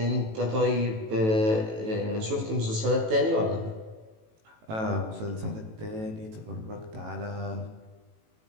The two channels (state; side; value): late; left; 18 ms